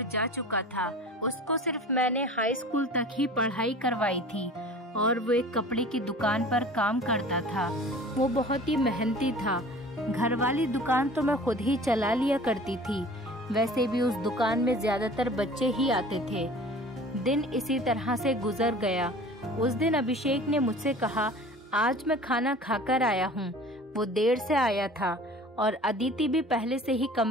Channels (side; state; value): both; normal; correlation 0.43